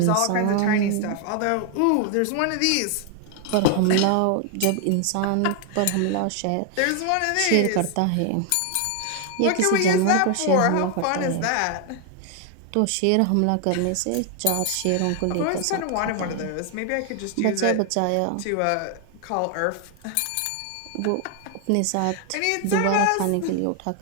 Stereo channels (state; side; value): different; both; correlation 0.00